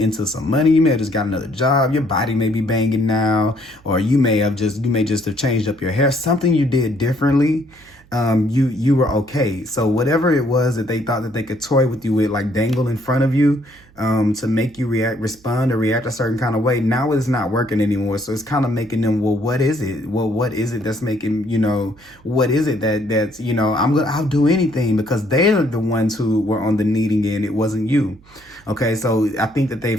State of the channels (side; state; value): right; noise; hum, 28 dB below the sound